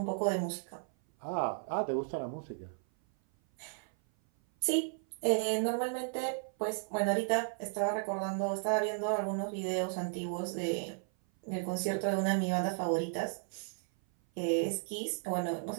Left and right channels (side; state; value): left; silent; 55 dB below the other